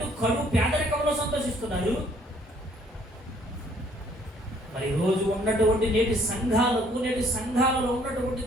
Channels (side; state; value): both; normal; correlation 0.62